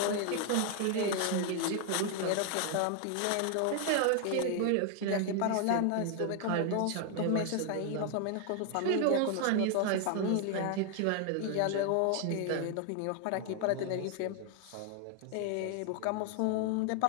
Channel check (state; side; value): different; both; correlation 0.00